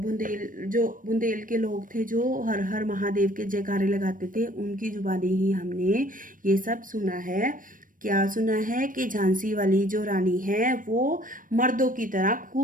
के लोग थे जो हर हर महादेव के जयकारे लगाते थे, उनकी जुबानी ही हमने ये सब सुना है। क्या सुना है? कि झांसी वाली जो रानी है वो मर्दों की तरह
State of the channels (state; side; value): late; left; 0.40 ms